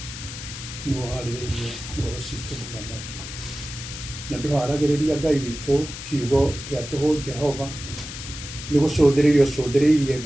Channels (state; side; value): noise; left; hiss, 10 dB below the sound